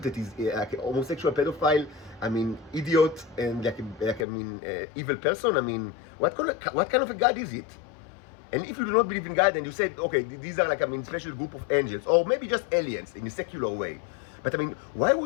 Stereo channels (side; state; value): right; drops out; at 4.2 s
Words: that is like a homosexual, pedophile, idiot, and evil person? What kind of a God is it? And if you do not believe in God, and you said, okay, these are like special group of angels, or maybe just aliens in a secular way. But why